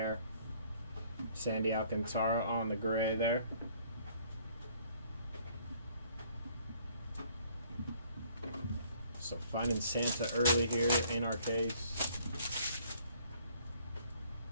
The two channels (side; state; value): both; inverted; correlation -0.60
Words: Sandy Alcantara on the gray there. So finding Santa early here in our case.